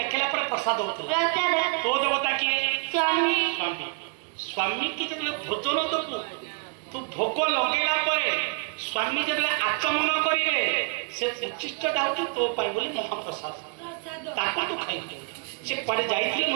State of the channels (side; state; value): left; quieter; 39.0 dB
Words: पर प्रसाद होता तो देवता किए स्वामी स्वामी स्वामी की जब भोजन दबू तू भोग लगेला स्वामी जब आचमन करेंगे से उचिष्ट दाऊ तो पाई बोली महाप्रसाद ताको तो खाई से पड़े जाइए